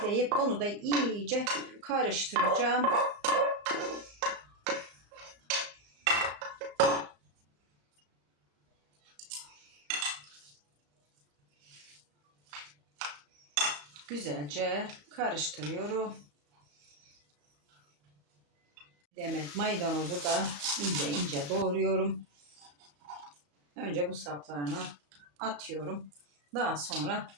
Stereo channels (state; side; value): late; left; 34 ms